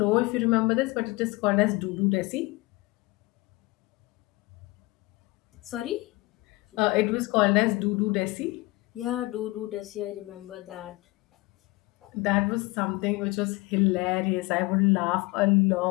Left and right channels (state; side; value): quieter; right; 22.4 dB